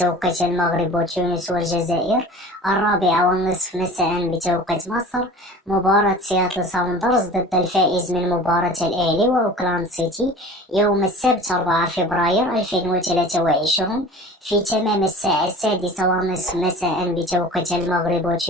المغرب وتونس والجزائر، 4:30 مساء بتوقيت مصر. مباراة سياتل ساوندرز ضد الفائز من مباراة الأهلي وأوكلاند سيتي يوم السبت 4 فبراير 2023 في تمام الساعة 6:30 مساء بتوقيت المغرب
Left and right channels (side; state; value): both; normal; correlation 0.40